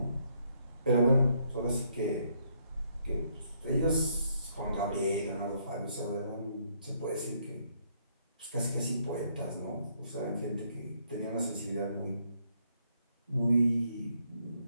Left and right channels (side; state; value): both; inverted; correlation -0.71